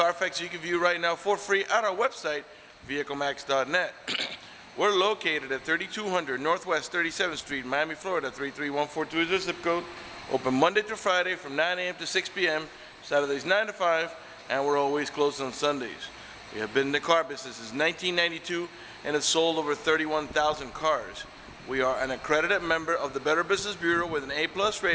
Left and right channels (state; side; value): identical; both; correlation 1.00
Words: you can view right now for free at our website, vehiclemax.net. We're located at 3200 Northwest 37th Street, Miami, Florida, 33142 is the zip code. Open Monday through Friday from 9 a.m. to 6 p.m., Saturdays 9 to 5, and we're always closed on Sundays. We have been in the car business since 1992 and have sold over 31,000 cars. We are an accredited member of the Better Business Bureau with an A+